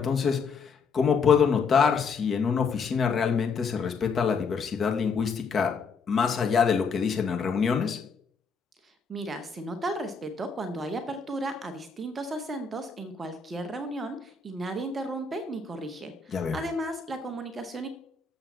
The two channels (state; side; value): quieter; right; 5.1 dB